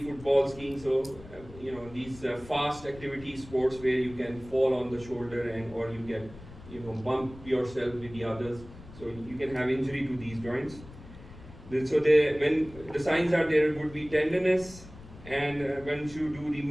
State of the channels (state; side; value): noise; left; rumble, 18 dB below the sound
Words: football, skiing. So these fast activity sports where you can fall on the shoulder or you can bump yourself with the others. So you can have injury to these joints. So when the signs are there, it would be tenderness, and when you do the